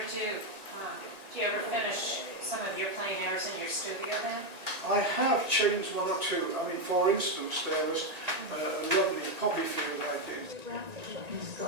Do you ever finish some of your plein airs in your studio then? I have changed one or two. I mean, for instance, there was a lovely poppy field I did.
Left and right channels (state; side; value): late; left; 1.9 ms